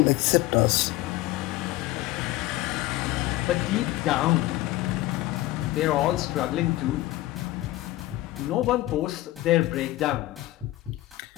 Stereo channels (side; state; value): right; quieter; 16.9 dB